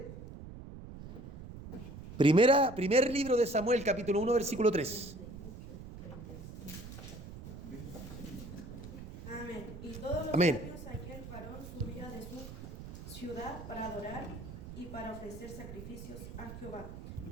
Primer libro de Samuel, capítulo 1, versículo 3. Amén. Y todos los Amén. años aquel varón subía de su ciudad para adorar y para ofrecer sacrificios a Jehová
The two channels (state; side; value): noise; right; rumble, 12 dB below the sound